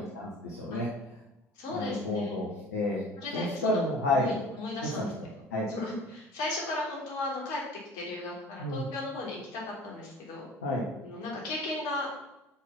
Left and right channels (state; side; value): normal; both; correlation 0.43